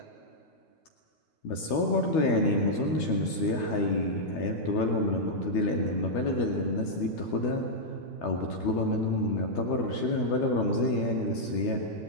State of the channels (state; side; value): late; right; 13 ms